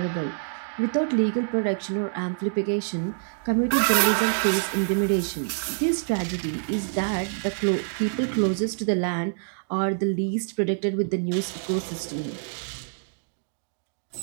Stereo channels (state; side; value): silent; left; digital silence